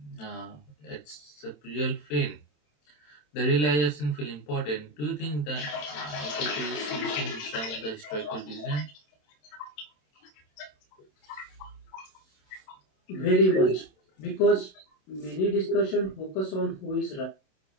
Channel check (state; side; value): late; right; 27 ms